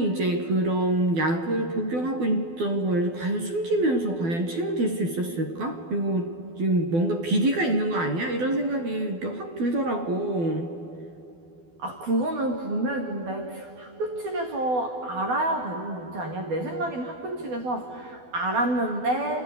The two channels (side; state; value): left; late; 12 ms